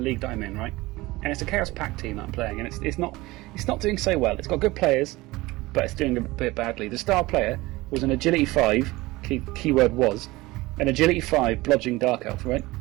that I'm in, right? And it's a Chaos Pact team that I'm playing, and it's not doing so well. It's got good players, but it's doing a bit badly. The star player was an Agility 5, keyword was, an Agility 5 blodging Dark Elf, right?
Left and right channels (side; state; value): left; quieter; 20.2 dB